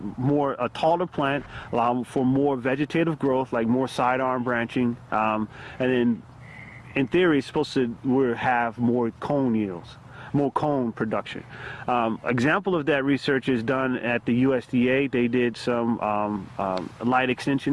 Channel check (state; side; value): identical; both; correlation 1.00